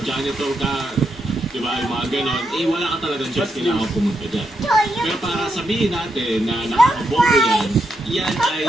janitor ka, diba, yung mga ganon, wala ka talagang choice, kailangan pumunta dyan. Pero para sabihin natin na nakakabobo yan ay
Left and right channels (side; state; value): both; normal; correlation 0.82